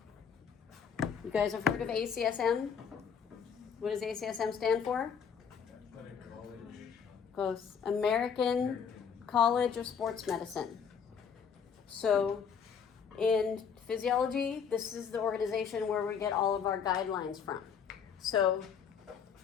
You guys have heard of ACSM? What does ACSM stand for? Close. American College of Sports Medicine. So in physiology, this is the organization where we get all of our guidelines from. So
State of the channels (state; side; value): quieter; right; 7.0 dB